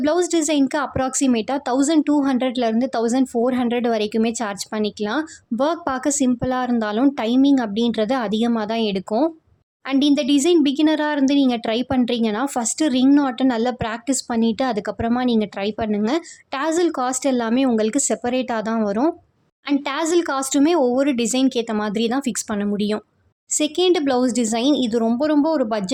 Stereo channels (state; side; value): identical; both; correlation 1.00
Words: ப்ளவுஸ் டிசைனுக்கு அப்ராக்சிமேட்டாக 1200லேருந்து 1400 வரைக்குமே சார்ஜ் பண்ணிக்கலாம். ஒர்க் பார்க்க சிம்பிளாக இருந்தாலும் டைமிங் அப்படின்றது அதிகமாக தான் எடுக்கும். அண்ட் இந்த டிசைன் பிகினராக இருந்து நீங்கள் ட்ரை பண்ணுறீங்கன்னா ஃபஸ்ட்டு ரிங் நாட்டை நல்லா ப்ராக்டிஸ் பண்ணிவிட்டு அதுக்கப்புறமா நீங்கள் ட்ரை பண்ணுங்கள். டாசல் காஸ்ட் எல்லாமே உங்களுக்கு செப்பரேட்டாக தான் வரும். அண்ட் டாசல் காஸ்ட்டுமே ஒவ்வொரு டிசைனுக்கு ஏற்ற மாதிரி தான் ஃபிக்ஸ் பண்ண முடியும். செகண்ட் ப்ளவுஸ் டிசைன், இது ரொம்ப ஒரு